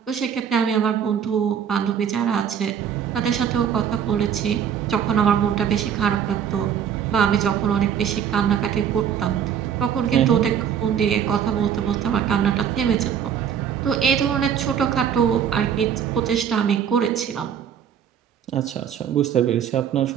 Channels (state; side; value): quieter; left; 8.5 dB